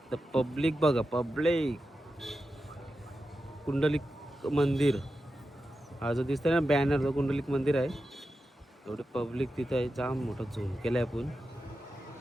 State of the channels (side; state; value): both; normal; correlation 0.91